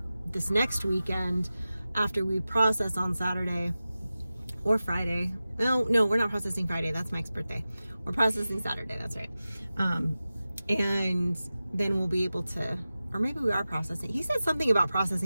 this next weekend after we process on Saturday or Friday. No, we're not processing Friday. That's Mike's birthday. We're processing Saturday. That's right. And then we'll be able to, or maybe we are processing. He said something about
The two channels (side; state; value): both; inverted; correlation -0.95